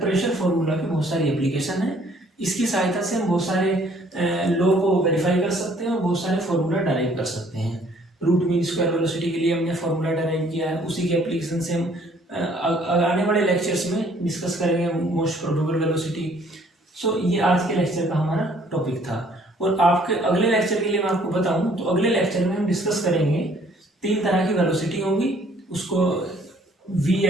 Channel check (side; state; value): both; normal; correlation 0.60